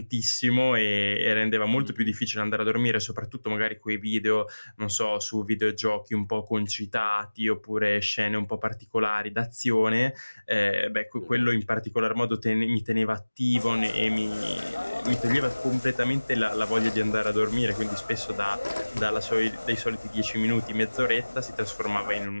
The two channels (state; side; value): inverted; both; correlation -1.00